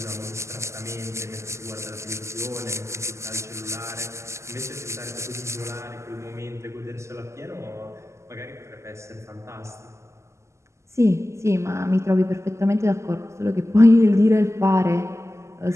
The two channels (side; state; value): left; late; 0.13 ms